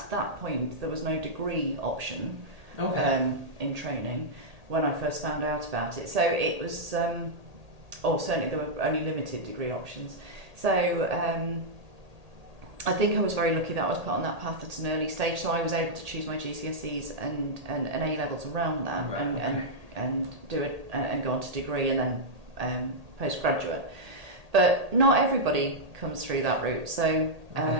that point there was no degree option in training when I first found out about it. So it was or certainly there were only limited degree options. So I think I was very lucky that I was put on that path at an early stage, so I was able to choose my GCSEs and A levels around that, and do it and go on to degree and then postgraduate. But not everybody comes through that route. So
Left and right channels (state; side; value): late; left; 1.8 ms